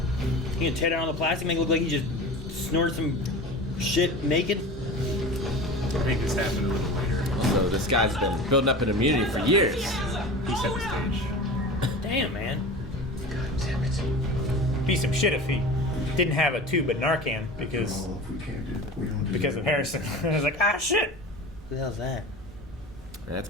You gonna tear down all the plastic, make it look like he just snorted some shit naked? I think this happened a little later. So this guy's been building up an immunity for years. He set the stage. Damn, man. Be some shit if he didn't have a tube of Narcan because Well, if we can't do it, we don't do of it. Harrison. I was like, ah, shit. Who the hell's that? That's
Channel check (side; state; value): both; normal; correlation 0.34